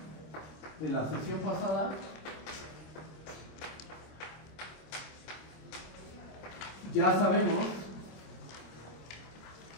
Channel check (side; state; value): right; late; 26 ms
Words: De la sección pasada, ya sabemos